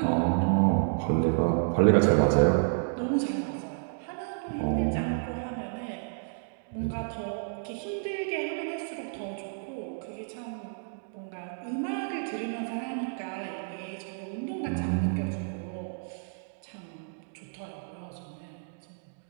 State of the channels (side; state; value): left; silent; digital silence